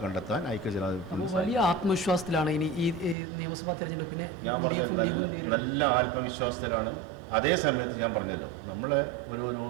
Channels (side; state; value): left; drops out; at 3.2 s